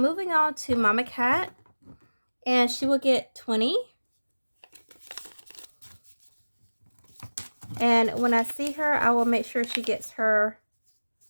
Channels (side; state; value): both; inverted; correlation -1.00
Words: on to Mama Cat, and she will get 20. And when I see her, I will make sure she gets her